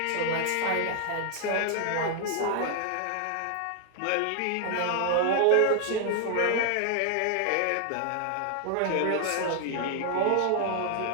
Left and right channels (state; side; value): different; both; correlation 0.00